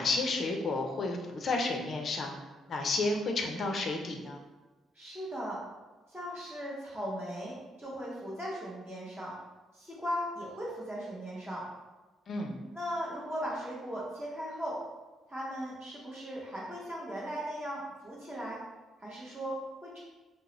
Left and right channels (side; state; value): both; normal; correlation 0.75